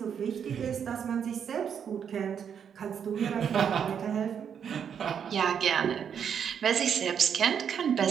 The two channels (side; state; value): left; quieter; 7.8 dB